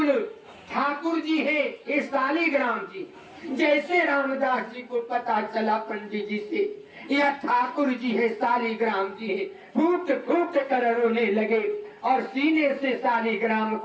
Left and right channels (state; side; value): identical; both; correlation 1.00